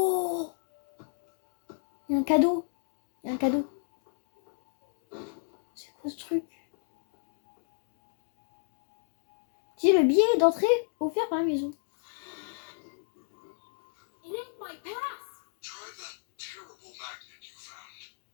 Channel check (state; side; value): silent; right; digital silence